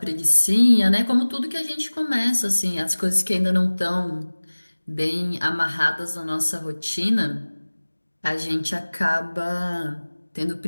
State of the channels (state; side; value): inverted; both; correlation -1.00